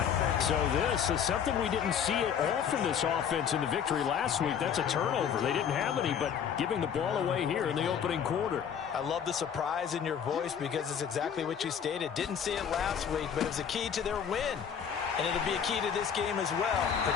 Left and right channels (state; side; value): quieter; right; 8.0 dB